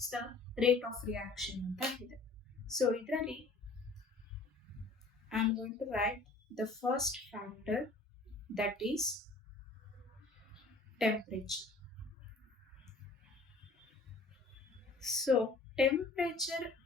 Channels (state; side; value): quieter; right; 3.6 dB